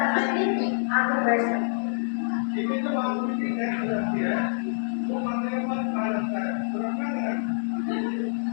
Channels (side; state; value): right; silent; digital silence